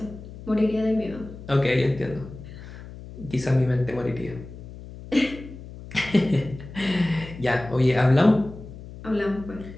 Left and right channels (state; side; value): noise; left; hum, 14 dB below the sound